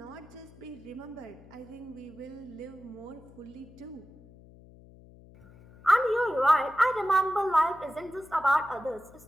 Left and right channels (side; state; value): left; noise; hum, 22 dB below the sound